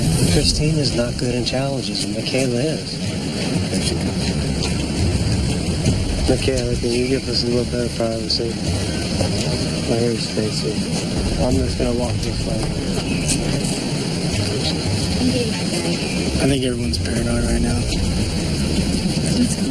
Christine is not good in challenges, and Michaela is. Michaela, can you give us a little bit of privacy? Here's Stacy. I'm just going to walk this way. I think everyone's paranoid right now. What's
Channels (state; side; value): identical; both; correlation 1.00